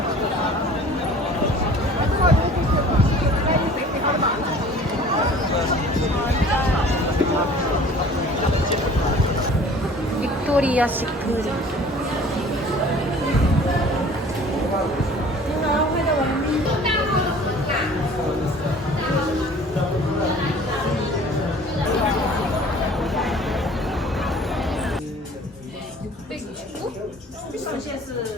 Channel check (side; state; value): both; normal; correlation 0.48